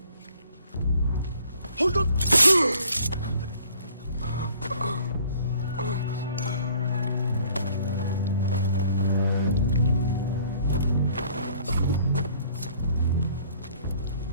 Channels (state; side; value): inverted; both; correlation -0.57